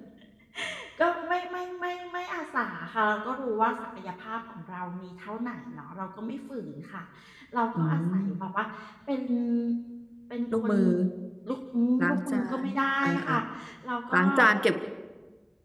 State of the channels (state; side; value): identical; both; correlation 1.00